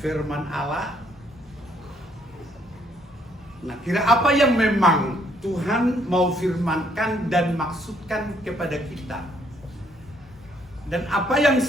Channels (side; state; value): both; normal; correlation 0.68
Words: Allah. Nah, kira apa yang memang Tuhan mau firmankan dan maksudkan kepada kita? Dan apa yang